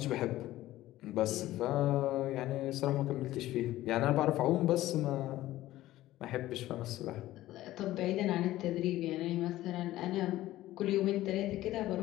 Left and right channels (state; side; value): quieter; right; 15.5 dB